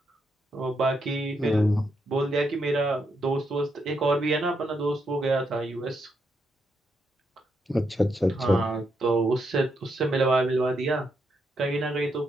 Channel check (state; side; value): normal; both; correlation 0.80